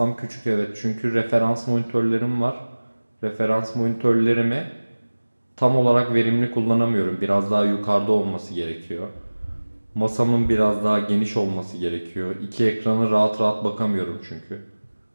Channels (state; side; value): inverted; both; correlation -1.00